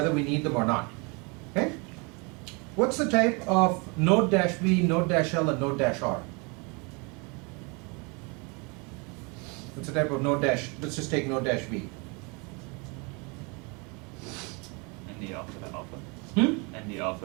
we need them or not. Okay? What's the type of node-v, node-l, and node-r? What's the type of node-? Let's just take node-v. ND alpha to alpha. Hmm? ND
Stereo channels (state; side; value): quieter; left; 30.9 dB